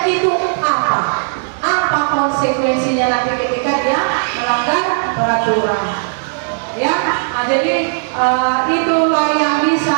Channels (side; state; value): left; silent; 69 dB below the other